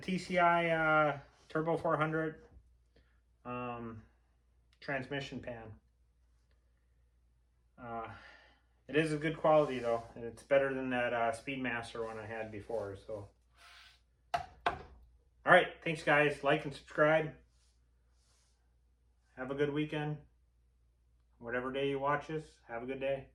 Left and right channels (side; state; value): both; identical; correlation 1.00